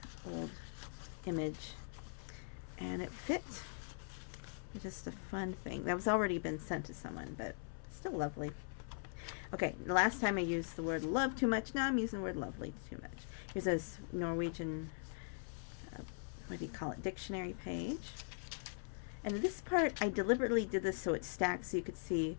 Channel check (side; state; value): right; silent; 50 dB below the other